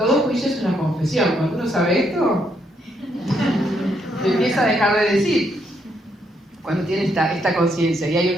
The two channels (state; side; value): normal; both; correlation 0.75